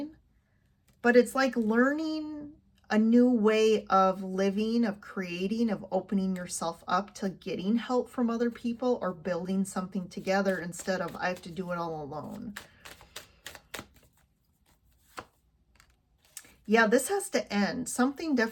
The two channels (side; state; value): both; identical; correlation 1.00